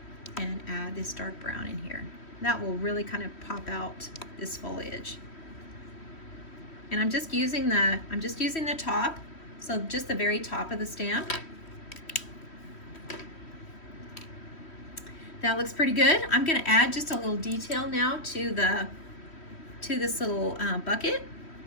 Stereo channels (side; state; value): right; late; 3.1 ms